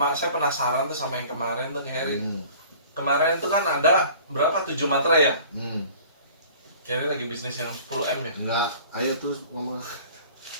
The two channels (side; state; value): both; inverted; correlation -0.47